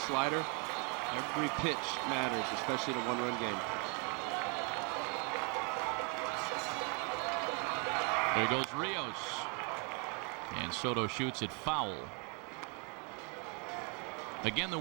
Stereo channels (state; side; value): quieter; left; 30.7 dB